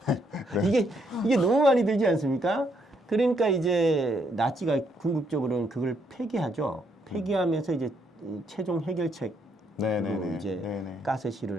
이게 너무 많이 들지 않습니까? 그러니까 이제 나치가 궁극적으로는 그걸 폐기하죠. 폐기하면서 이제 이 최종 해결책으로 네네네. 이제 네네.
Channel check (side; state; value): both; normal; correlation 0.73